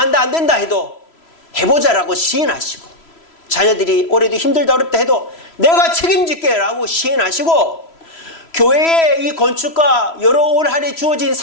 안 된다 해도 해보자라고 시인하시고, 자녀들이 올해도 힘들다 어렵다 해도 내가 책임질게 라고 시인하시고, 교회의 이 건축과 여러 올 한 해 주어진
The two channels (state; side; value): late; right; 3.0 ms